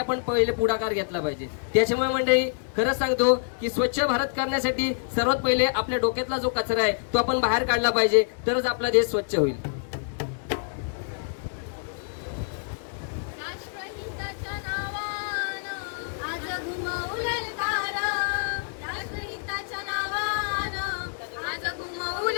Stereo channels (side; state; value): right; silent; digital silence